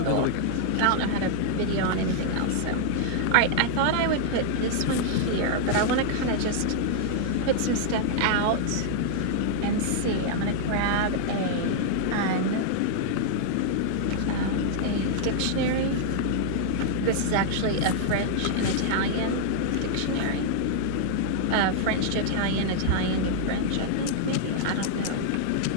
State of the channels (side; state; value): both; different; correlation -0.01